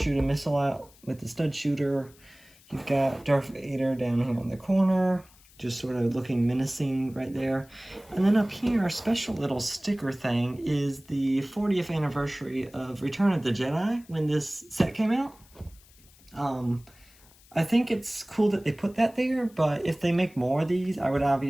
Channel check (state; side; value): noise; left; hiss, 27 dB below the sound